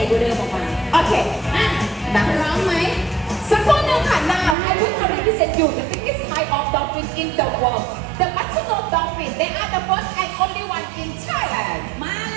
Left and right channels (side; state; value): left; drops out; at 4.5 s